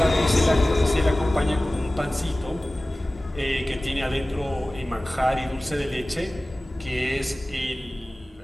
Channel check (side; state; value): both; normal; correlation 0.97